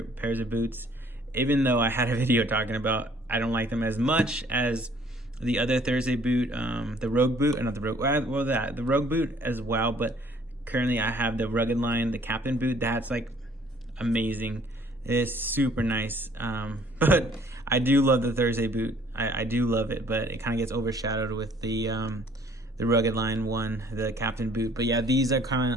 pairs of boots. Even though I had a video talking about I don't like them as much as the other Thursday boot, the Rogue boot, not the Rogue, well, the Rogue boot as well. But currently I have the Rugged line, the Captain boot. That's like amazing. It's super nice. But I do love the Thursday boot. I do love it, but it kind of gets overshadowed with the Rugged line one, the Captain boot. But yeah, these are kind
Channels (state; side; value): normal; both; correlation 0.58